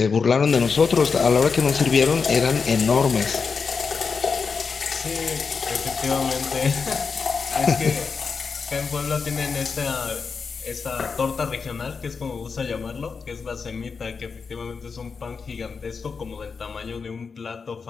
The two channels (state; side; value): quieter; right; 5.3 dB